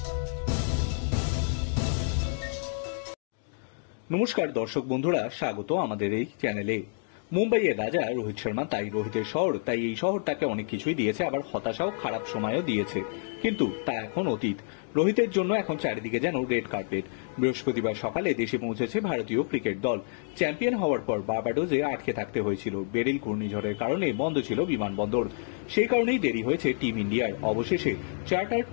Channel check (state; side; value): silent; right; digital silence